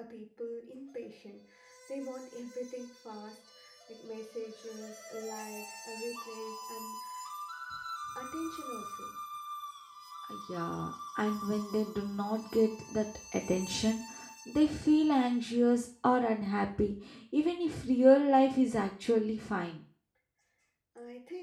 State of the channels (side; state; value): both; identical; correlation 1.00